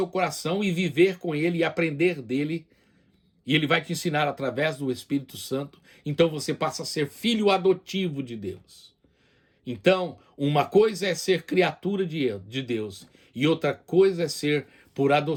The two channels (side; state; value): both; identical; correlation 1.00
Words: coração, e viver com ele, e aprender dele, e ele vai te ensinar através do Espírito Santo. Então você passa a ser filho adotivo de Deus. Então, uma coisa é ser criatura de Deus, e outra coisa é ser, por